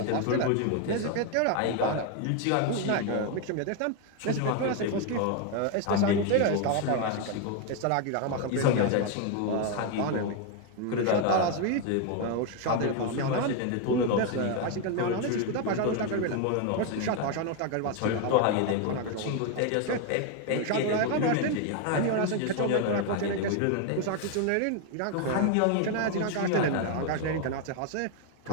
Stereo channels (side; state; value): both; different; correlation 0.01